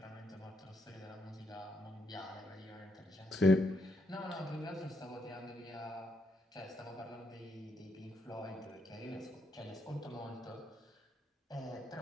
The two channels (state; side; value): normal; both; correlation 0.78